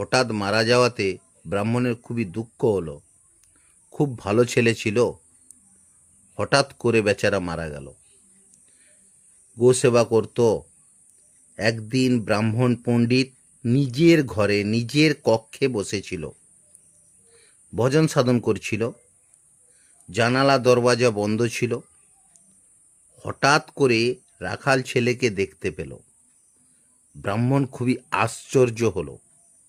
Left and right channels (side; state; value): both; identical; correlation 1.00